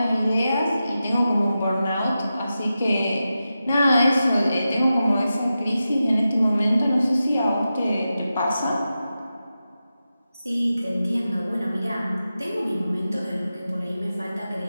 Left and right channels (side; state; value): both; inverted; correlation -0.91